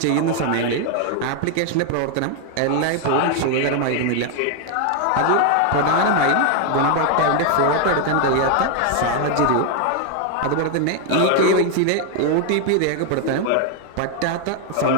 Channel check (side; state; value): both; different; correlation 0.00